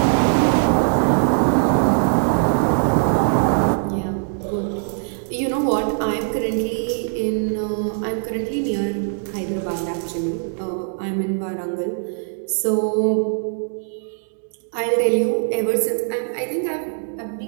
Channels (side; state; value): left; silent; digital silence